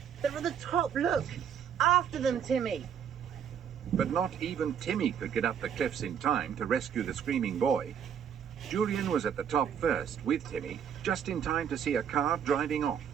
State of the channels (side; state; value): left; quieter; 8.2 dB